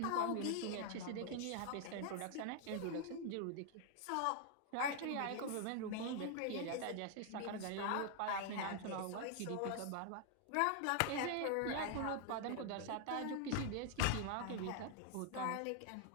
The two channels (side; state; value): both; different; correlation 0.00